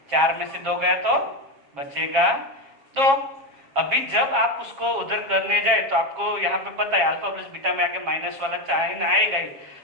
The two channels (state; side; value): late; left; 7.3 ms